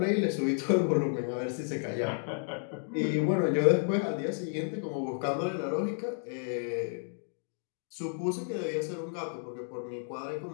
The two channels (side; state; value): right; silent; digital silence